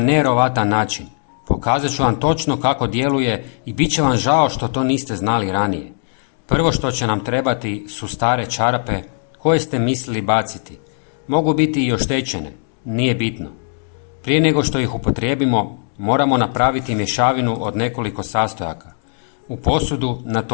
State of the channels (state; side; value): silent; right; digital silence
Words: način. Pokazat ću vam točno kako djeluje i bit će vam žao što to niste znali ranije. Prvo što će nam trebati su stare čarape koje ste mislili baciti. Mogu biti i oštećene, nije bitno. Prije nego što ih upotrijebimo, moramo napraviti mješavinu od nekoliko sastojaka. U posudu